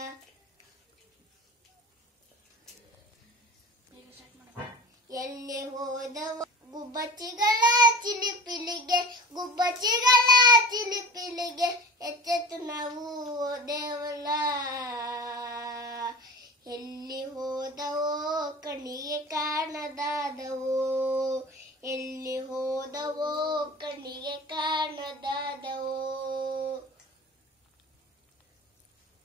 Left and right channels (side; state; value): both; normal; correlation 0.36